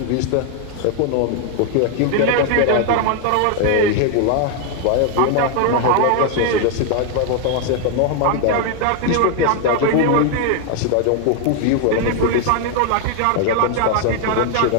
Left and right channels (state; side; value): different; both; correlation 0.00